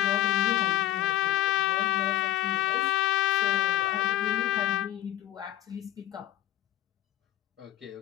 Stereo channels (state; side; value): quieter; right; 13.2 dB